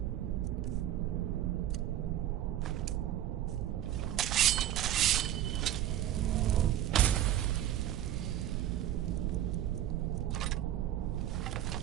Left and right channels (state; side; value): quieter; left; 12.0 dB